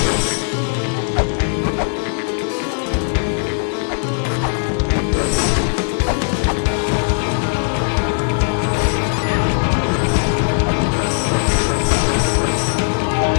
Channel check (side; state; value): right; silent; digital silence